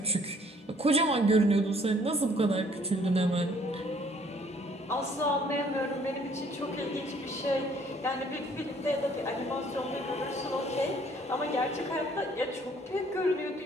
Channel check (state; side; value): normal; both; correlation 0.60